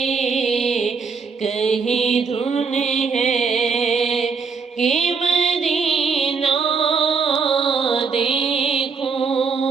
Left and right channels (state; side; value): quieter; left; 5.1 dB